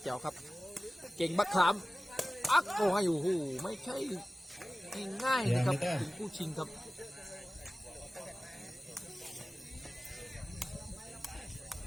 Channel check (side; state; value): both; normal; correlation 0.96